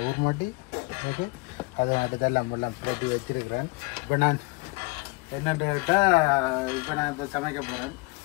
ஊர் மட்டி. ஓகே, அதை நட்டு எல்லாம் பிரட்டி வச்சிருக்கிறேன். இப்போ நான் என்னென்னு கேட்டால் இப்போ நான் இப்போ சமைக்க போகிறேன்.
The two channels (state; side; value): quieter; right; 26.8 dB